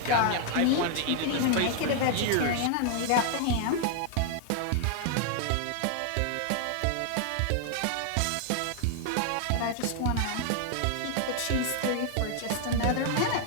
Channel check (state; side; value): different; both; correlation 0.00